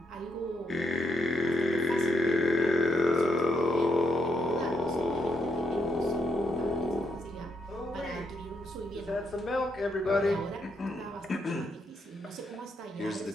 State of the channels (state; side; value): normal; both; correlation 0.78